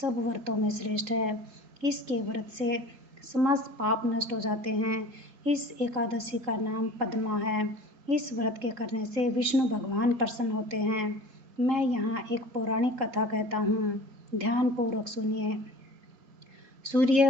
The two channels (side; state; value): left; late; 3.7 ms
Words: व्रतों में श्रेष्ठ है। इसके व्रत से समस्त पाप नष्ट हो जाते हैं। इस एकादशी का नाम पद्मा है। इस व्रत के करने से विष्णु भगवान प्रसन्न होते हैं। मैं यहाँ एक पौराणिक कथा कहता हूँ, ध्यान पूर्वक सुनिए।